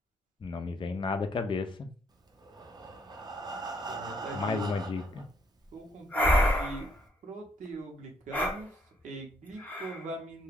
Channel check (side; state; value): both; normal; correlation 0.69